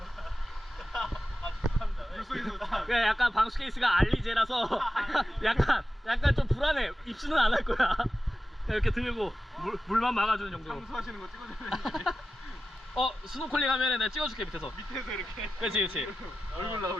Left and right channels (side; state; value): both; normal; correlation 0.93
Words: 그냥 약간 방수 케이스가 알리제라서 약간 좀 불안해. 입수는 안 할 거야. 이렇게 들고 물만 막아주는 정도. 청소하시는 거 찍어주면 스노클링 하면은 내가 찍어줄게 밑에서. 밑에서 이렇게. 그렇지. 얼굴